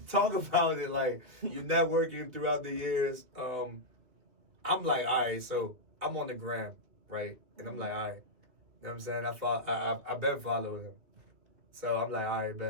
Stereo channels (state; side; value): late; left; 2.6 ms